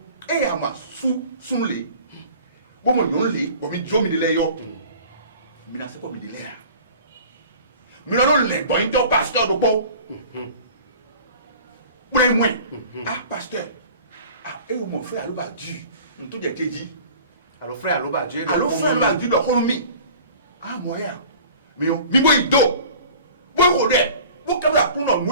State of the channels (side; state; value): both; inverted; correlation -0.44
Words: Et à ma sous les. Bon, mon les, bon, mi jomi de l'ayo. Mais là, c'est pas mi de l'air. Mais là, les bon, il pasteur de bon. Moins. Ah, pasteur. Ah, et mon frère Alouba Dieu, nous tout est dit. Alors frère Alouba Dieu. Alors frère Alouba Dieu, le homme. Ah, moyen. Mais on, mi boy do. Boy rodé. Boy comme la pour nous,